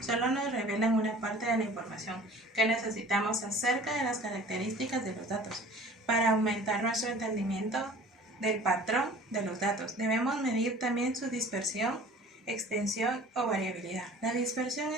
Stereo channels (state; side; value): normal; both; correlation 0.46